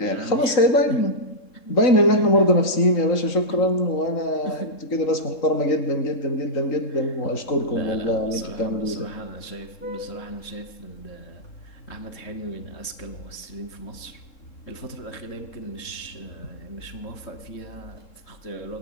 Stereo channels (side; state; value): right; late; 3.7 ms